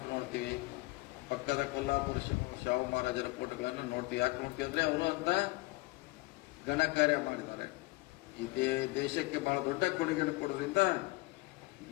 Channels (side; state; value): right; quieter; 22.4 dB